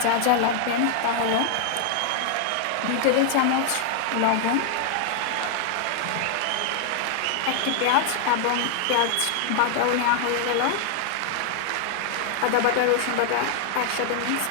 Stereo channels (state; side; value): different; both; correlation 0.00